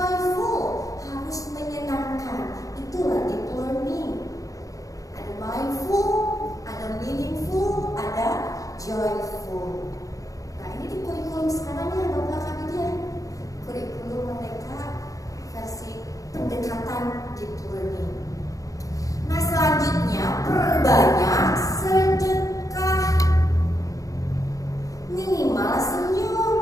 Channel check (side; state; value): right; late; 0.17 ms